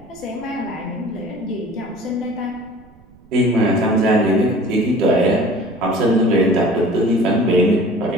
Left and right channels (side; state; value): right; noise; rumble, 26 dB below the sound